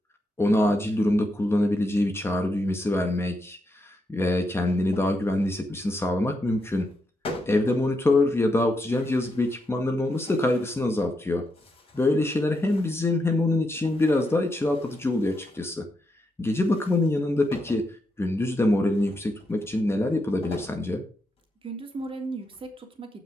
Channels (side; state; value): both; normal; correlation 0.82